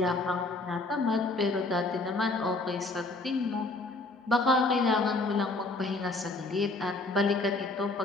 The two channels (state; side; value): quieter; right; 3.2 dB